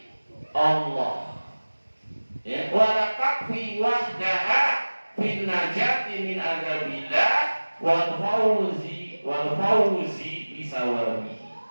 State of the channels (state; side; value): inverted; both; correlation -1.00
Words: Allah. Ya, wala takfi wahdaha fin najati min adabillah wal fawzi bisawabi.